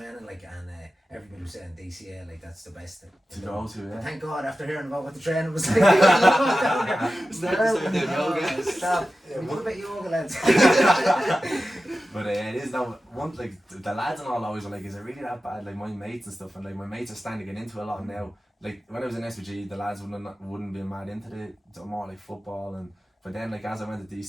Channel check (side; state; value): both; normal; correlation 0.94